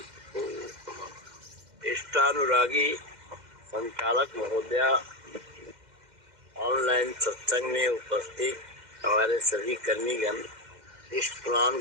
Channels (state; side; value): late; left; 2.1 ms